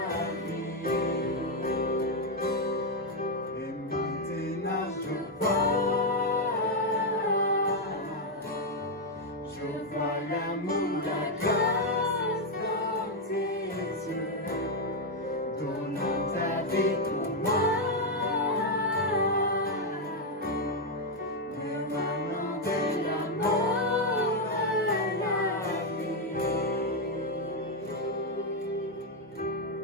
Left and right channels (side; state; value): both; normal; correlation 0.02